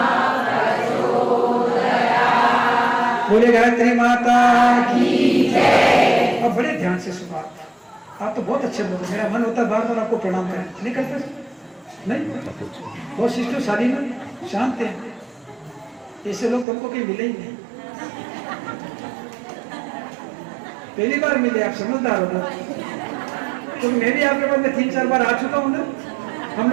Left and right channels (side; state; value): left; drops out; at 16.7 s